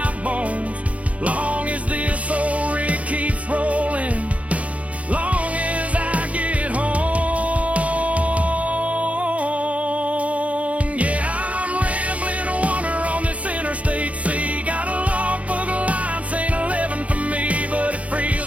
bones, long as this old rig keeps rolling, long as I get home. Yeah, I'm rambling a wander on this interstate sea. Got a long book of lines saying 11 for me, but it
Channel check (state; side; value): late; left; 0.066 ms